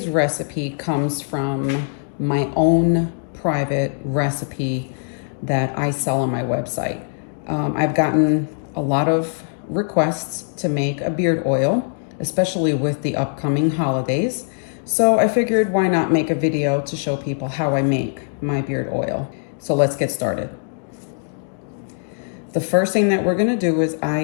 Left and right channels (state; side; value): silent; right; digital silence